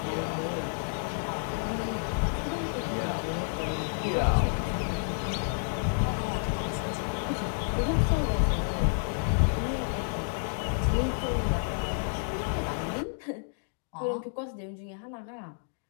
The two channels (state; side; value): silent; right; digital silence